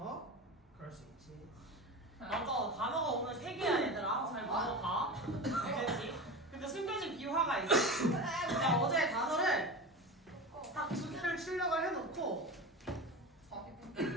그럴 수 있지. 맞아, 단어가 오늘 3개야 얘들아. 잘 넘어가. 알겠지? 근데 숨겨진 비화가 있어. 내가 어제 단어를 딱 2개를 출력을 해놓고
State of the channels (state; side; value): normal; both; correlation 0.27